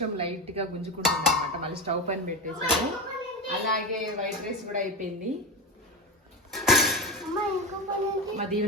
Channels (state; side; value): normal; both; correlation 0.19